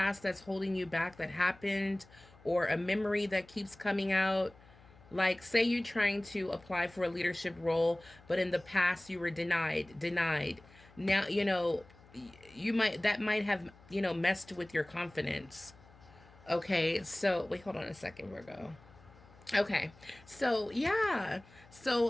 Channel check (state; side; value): noise; left; hum, 25 dB below the sound